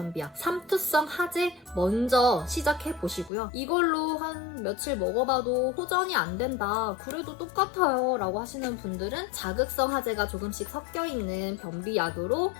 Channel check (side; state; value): right; drops out; at 3.3 s